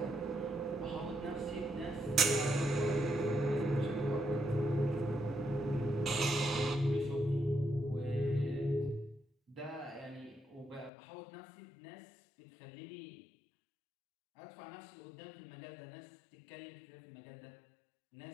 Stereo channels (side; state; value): right; drops out; at 10.9 s